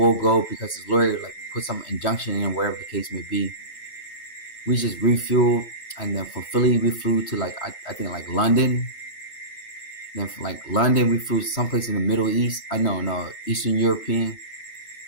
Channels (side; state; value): right; late; 2.2 ms